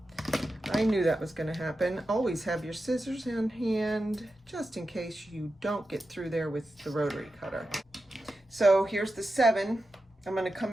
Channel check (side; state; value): both; normal; correlation 0.91